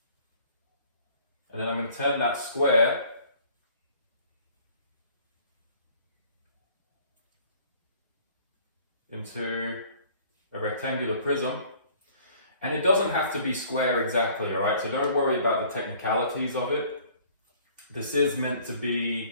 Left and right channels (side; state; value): both; inverted; correlation -0.54